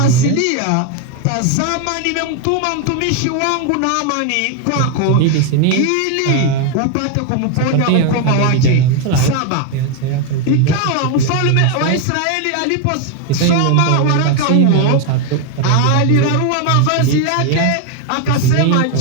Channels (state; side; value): different; both; correlation 0.01